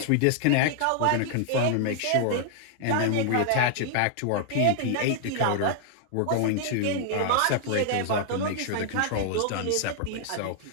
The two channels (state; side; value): different; both; correlation -0.01